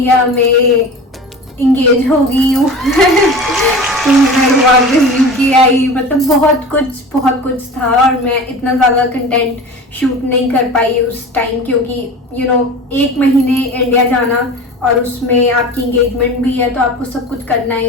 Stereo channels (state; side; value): normal; both; correlation 0.34